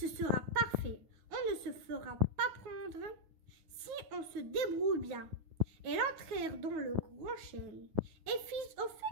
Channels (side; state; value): left; late; 9.5 ms